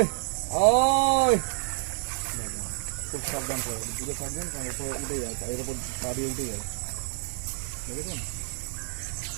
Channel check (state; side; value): silent; left; 59 dB below the other